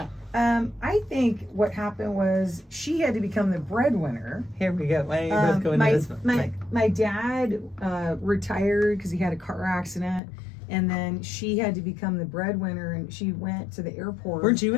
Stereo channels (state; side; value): drops out; right; at 10.2 s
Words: I think what happened was she had to become the breadwinner. Here we go. Why don't you both go into my, this one? Mike? my dad retired because he had a car accident, and then she had to become the breadwinner, and she went to the airport. Weren't you